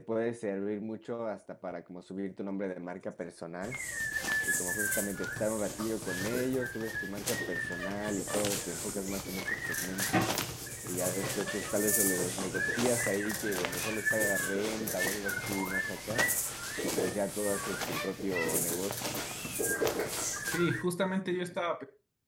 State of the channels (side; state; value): both; identical; correlation 1.00